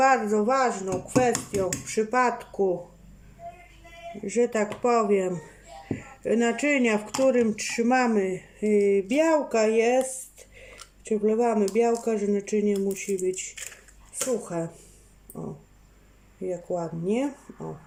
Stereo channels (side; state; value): both; identical; correlation 1.00